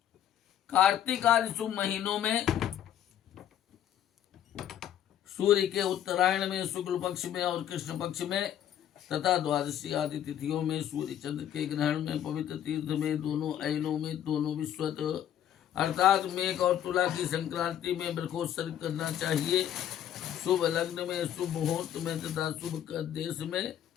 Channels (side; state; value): right; quieter; 10.7 dB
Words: कार्तिक आदि शुभ महीनों में सूर्य के उत्तरायण में, शुक्ल पक्ष में और कृष्ण पक्ष में तथा द्वादशी आदि तिथियों में, सूर्य चंद्र के ग्रहण में, पवित्र तीर्थ में, दोनों अयनों में, दोनों विश्वत अर्थात मेघ और तुला की संक्रांति में वृक्षोत्सर्ग करना चाहिए। शुभ लग्न में, शुभ मुहूर्त में तथा शुभ देश में